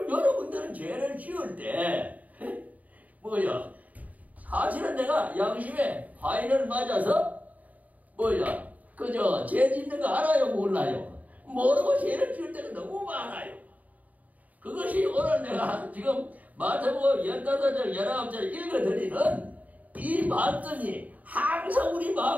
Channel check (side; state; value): left; late; 0.073 ms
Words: 여러분들은 죄를 지을 때 사실은 내가 양심에 화인을 맞아서 죄 짓는 거 알아요 몰라요? 모르고 죄를 지을 때가 너무 많아요. 그것이 오늘 내가 지금 마태복음 15장 19절 읽어드리는 이 말씀이 항상 우리